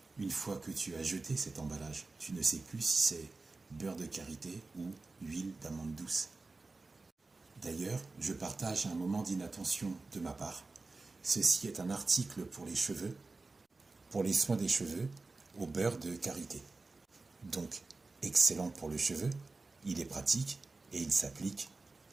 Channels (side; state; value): left; quieter; 3.6 dB